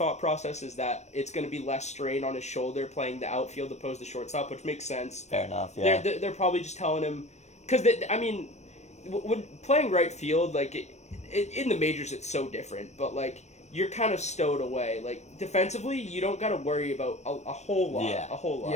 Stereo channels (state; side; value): late; right; 0.33 ms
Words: process is that it's going to be less strain on his shoulder playing the outfield opposed to shortstop, which makes sense. Fair enough. Yeah. They're probably just telling him because I mean, when playing right field, like in the majors, it's so different. But like you're kind of stowed away. Like defensively, you don't got to worry about a whole lot. Yeah. A whole lot.